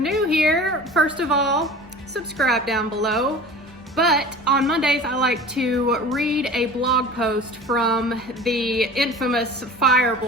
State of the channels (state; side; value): normal; both; correlation 0.39